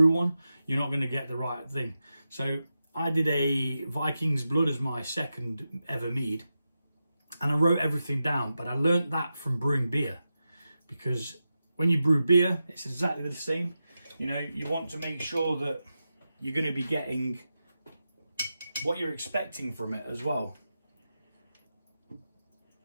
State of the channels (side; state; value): both; inverted; correlation -0.91